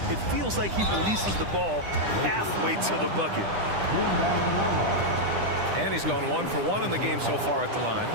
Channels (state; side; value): late; left; 9.9 ms